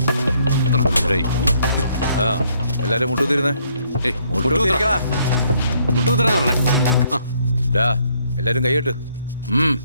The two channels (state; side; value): inverted; both; correlation -0.69